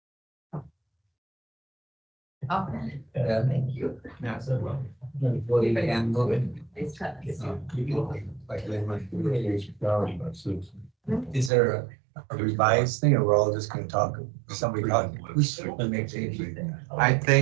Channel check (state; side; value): drops out; left; at 11.5 s